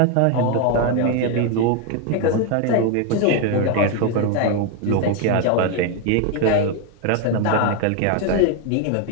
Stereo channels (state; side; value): different; both; correlation 0.01